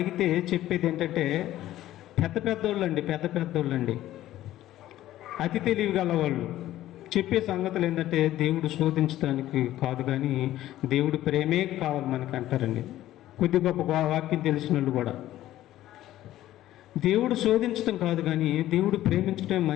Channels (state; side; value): quieter; right; 14.0 dB